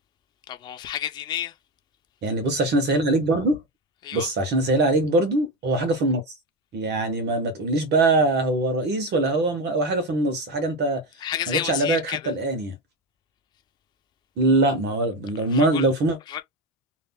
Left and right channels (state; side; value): normal; both; correlation 0.15